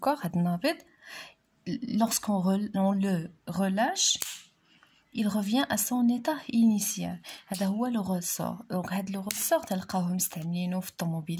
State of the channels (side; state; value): both; identical; correlation 1.00